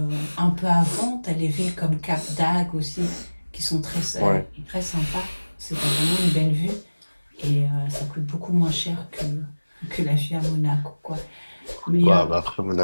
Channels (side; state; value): both; inverted; correlation -1.00